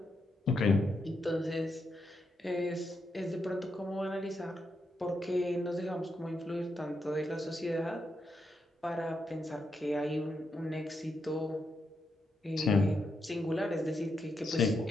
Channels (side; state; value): both; normal; correlation 0.83